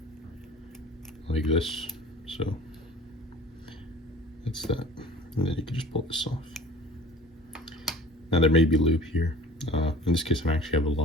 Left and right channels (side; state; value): both; normal; correlation 0.44